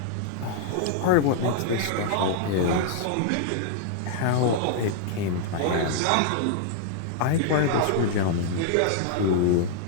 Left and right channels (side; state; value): both; different; correlation -0.01